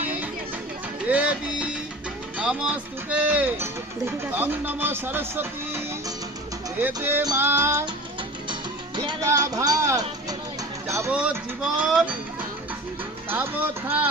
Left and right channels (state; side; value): normal; both; correlation 0.36